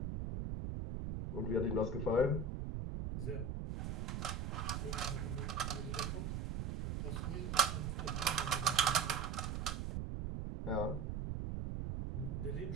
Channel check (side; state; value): right; noise; rumble, 2 dB below the sound